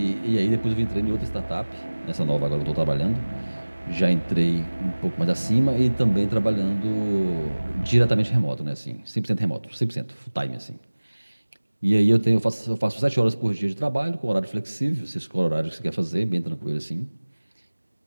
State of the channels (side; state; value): both; inverted; correlation -1.00